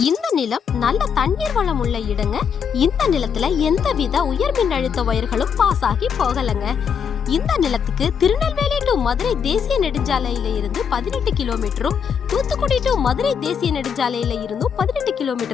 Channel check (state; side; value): quieter; right; 7.1 dB